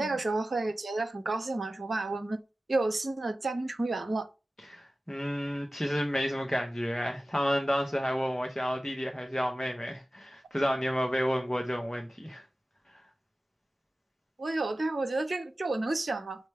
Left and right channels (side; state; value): both; normal; correlation 0.96